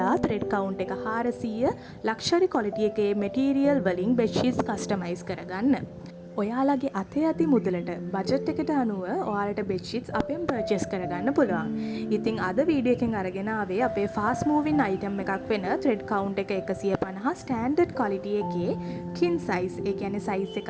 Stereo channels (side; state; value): both; identical; correlation 1.00